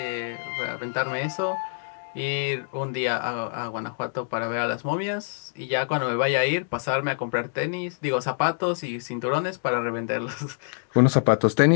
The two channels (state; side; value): silent; right; digital silence